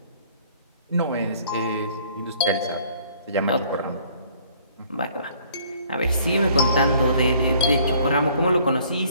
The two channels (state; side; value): inverted; both; correlation -0.58